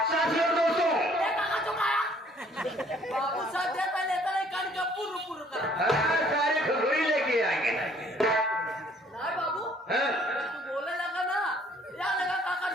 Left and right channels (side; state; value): both; normal; correlation 0.60